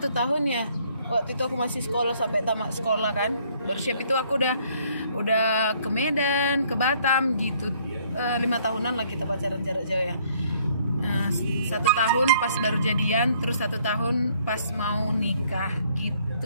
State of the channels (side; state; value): both; inverted; correlation -0.64